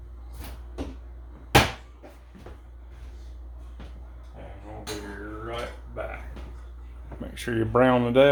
And we'll be right back. Make sure you brown it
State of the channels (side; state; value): both; identical; correlation 1.00